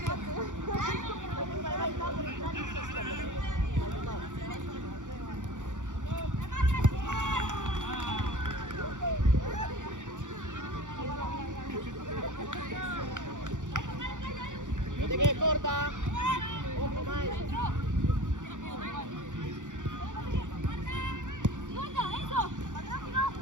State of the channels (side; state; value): left; late; 0.86 ms